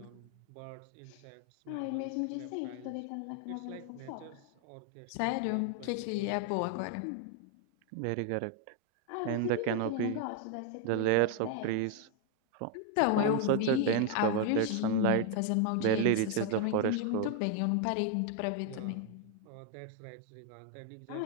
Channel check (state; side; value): different; both; correlation 0.01